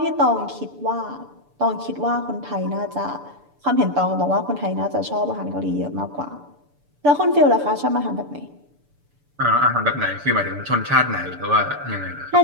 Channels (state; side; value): late; left; 6.9 ms